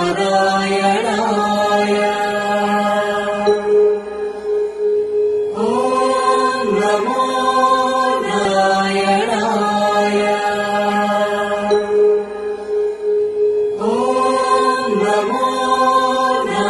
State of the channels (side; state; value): both; identical; correlation 1.00